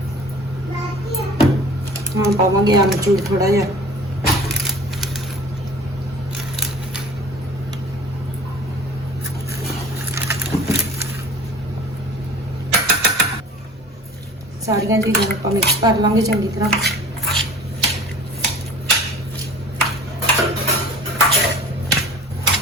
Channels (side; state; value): both; normal; correlation 0.44